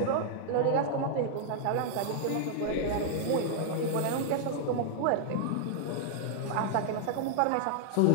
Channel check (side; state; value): both; different; correlation -0.01